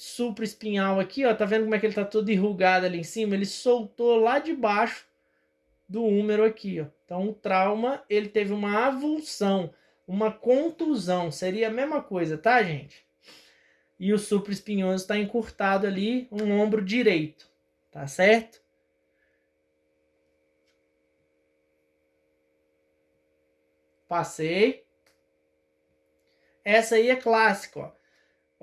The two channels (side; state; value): both; identical; correlation 1.00